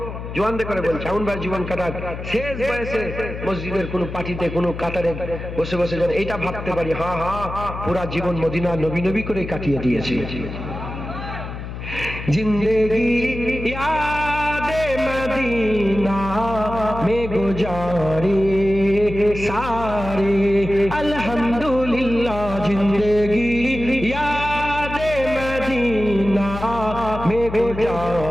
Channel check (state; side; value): noise; left; hum, 9 dB below the sound